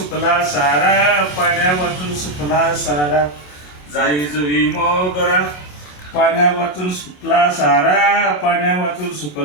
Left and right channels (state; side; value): late; right; 27 ms